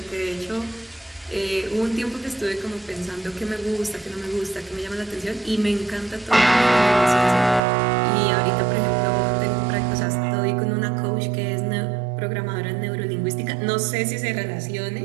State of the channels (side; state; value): left; drops out; at 7.6 s